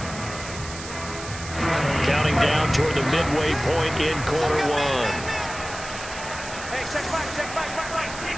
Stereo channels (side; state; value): right; noise; hiss, 12 dB below the sound